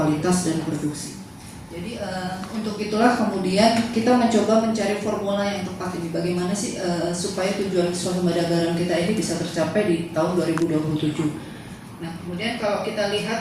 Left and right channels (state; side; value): identical; both; correlation 1.00